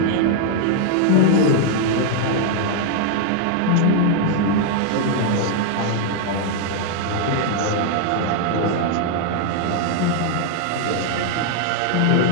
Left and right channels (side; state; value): both; different; correlation 0.00